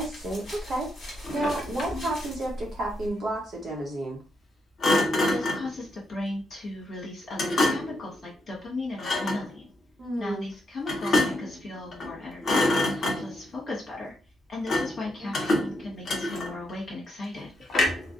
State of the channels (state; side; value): normal; both; correlation 0.80